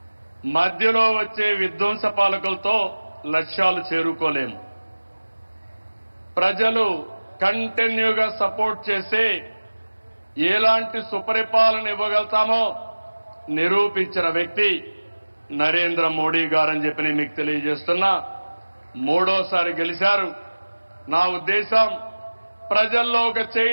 మధ్యలో వచ్చే విధ్వంస పాలకులతో లక్ష్యాలు చేరుకోలేము. ప్రజలు కంటిన్యూగా సపోర్ట్ చేసే ఎలాంటి సుపరిపాలన ఇవ్వగలుగుతామో నిరూపించిన వ్యక్తి నరేంద్ర మోడీ గారని చెప్పి నేను మీకు తెలియజేస్తున్నా. మూడోసారి గెలిచారు. నా ఉద్దేశం ప్రజల్లో ఒక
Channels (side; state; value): both; inverted; correlation -1.00